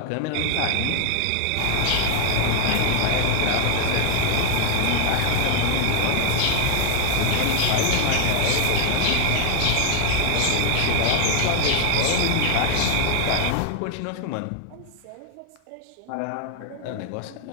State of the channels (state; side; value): different; both; correlation 0.00